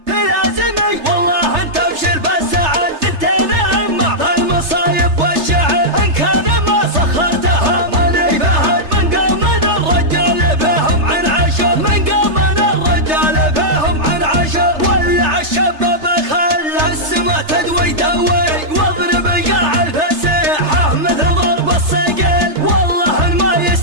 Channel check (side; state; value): left; late; 3.3 ms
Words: في لازمي والله انت ابشر بالسعد، ثنتين اما في المصايب والشعر، ان كان ما سخرته ماني فهد من قوم الرجال فيهم عن عشر، من قوم الرجال فيهم عن عشر. ولع الشباب خلى السما تدوي دوي، واضرب قاع الفسيحة مثل ضرب الصقل، والله ما